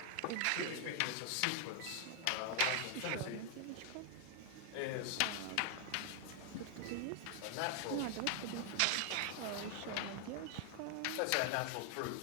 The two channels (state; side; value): different; both; correlation 0.00